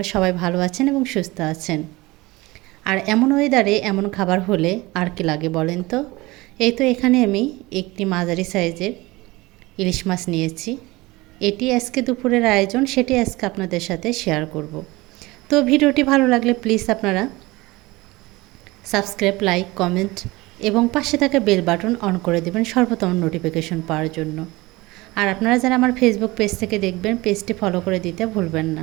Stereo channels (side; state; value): left; quieter; 21.3 dB